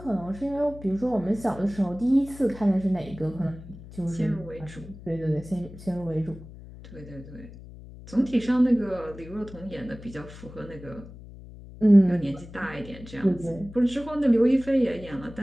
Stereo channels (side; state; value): left; noise; hum, 16 dB below the sound